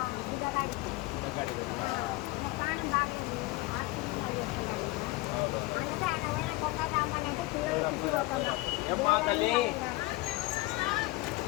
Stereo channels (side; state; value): right; quieter; 20.8 dB